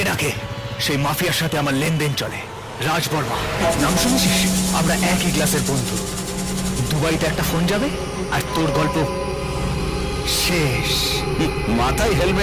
রাখে সেই মাফিয়ার সাথে আমার লেনদেন চলে। রাজ বর্মা নাম শুনেছিস? আমরা একই ক্লাসের বন্ধু। দুবাইতে একটা ফোন যাবে আর তোর গল্প শেষ। মাথায়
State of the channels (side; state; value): both; identical; correlation 1.00